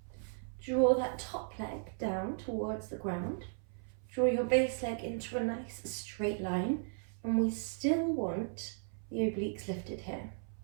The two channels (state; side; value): silent; left; 54 dB below the other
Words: draw that top leg down towards the ground. Draw your base leg into a nice straight line, and we still want the obliques lifted here.